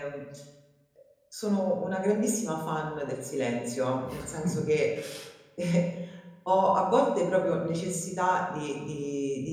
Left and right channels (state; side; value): identical; both; correlation 1.00